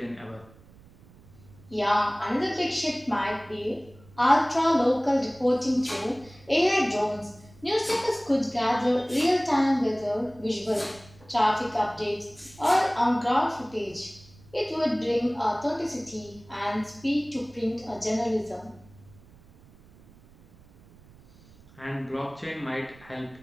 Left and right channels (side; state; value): right; noise; rumble, 25 dB below the sound